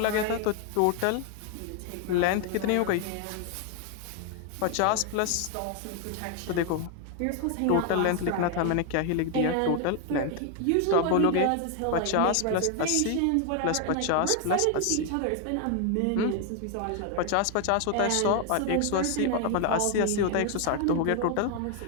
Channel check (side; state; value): both; different; correlation 0.01